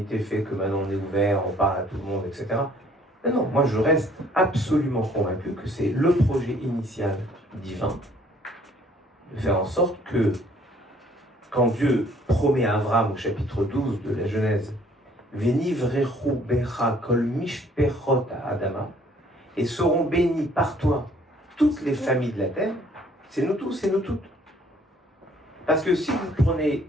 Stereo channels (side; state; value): both; normal; correlation 0.59